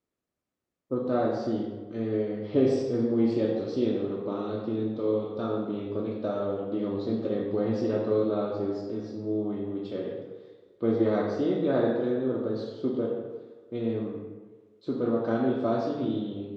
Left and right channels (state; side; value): identical; both; correlation 1.00